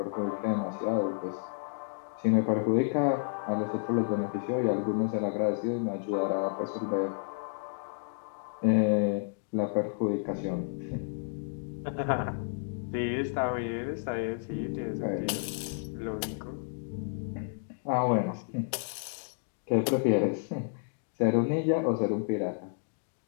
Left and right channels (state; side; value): silent; right; digital silence